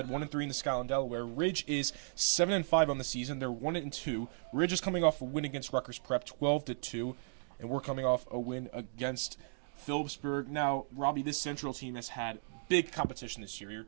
1-3 in the Skyline Delaware. Ridge is 7-5 on the season. They're 1-2. Ridge is coming off a win against Rutgers Prep, 12-2, and we're coming off a win against Phillipsburg. Now, Robbie, this Central team has had big competition this year. You're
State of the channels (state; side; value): silent; left; digital silence